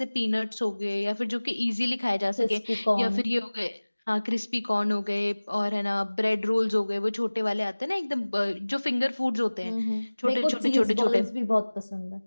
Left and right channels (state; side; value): inverted; both; correlation -1.00